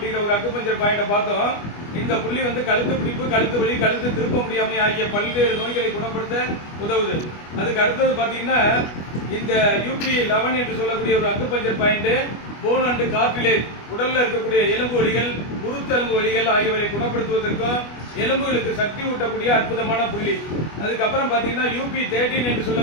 ஒரு அக்குபஞ்சர் பாயிண்ட பார்த்தோம். இந்த புள்ளி வந்து கழுத்து பிடிப்பு, கழுத்து வலி, கழுத்து திருப்ப முடியாமை ஆகிய பல்வேறு நோய்களை குணப்படுத்த உதவுது. அதுக்கு அடுத்தது பாத்தீங்கன்னா இந்த UP11 என்று சொல்லக்கூடிய ஒரு acupuncture point phone and cartilage, உடல்ல இருக்கக்கூடிய எலும்பு வலிகள், குருத்தெலும்பு வலிகள் ஆகியவற்றை குணப்படுத்துவதற்கும் எலும்புகளுக்கு சக்தி ஊட்டக்கூடிய அற்புதமான புள்ளி. அதுக்கப்புறம் பாத்தீங்கன்னா UP13 என்று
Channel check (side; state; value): right; late; 25 ms